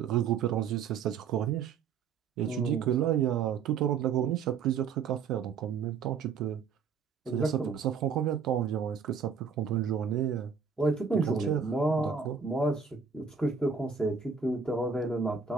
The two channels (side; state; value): left; quieter; 6.2 dB